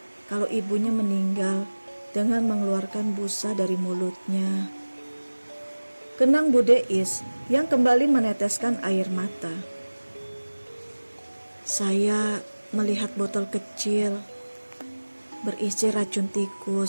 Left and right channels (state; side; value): inverted; both; correlation -1.00